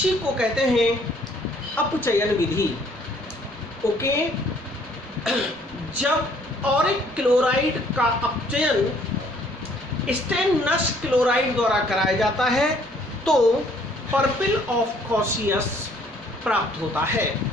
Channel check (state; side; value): normal; both; correlation 0.61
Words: को कहते हैं अपचयन विधि। ओके, जब ऑरिक क्लोराइड का अपचयन स्टेनस क्लोराइड द्वारा कराया जाता है तो पर्पल ऑफ कॉशियस प्राप्त होता है।